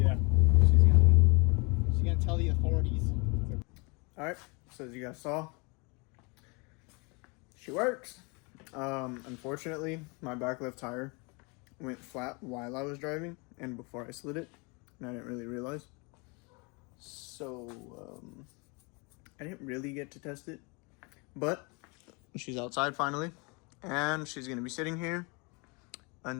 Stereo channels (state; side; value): quieter; right; 30.4 dB